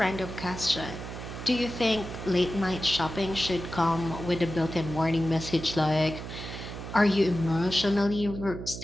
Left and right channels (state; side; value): noise; right; hum, 9 dB below the sound